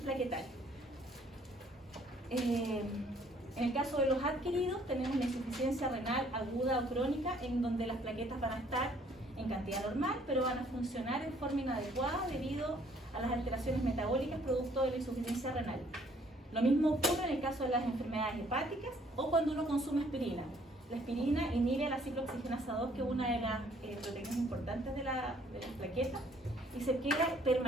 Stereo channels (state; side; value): normal; both; correlation 0.62